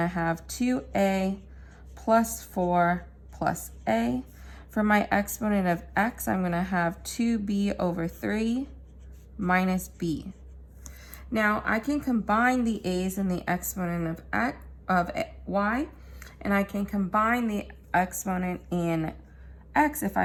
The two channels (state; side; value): identical; both; correlation 1.00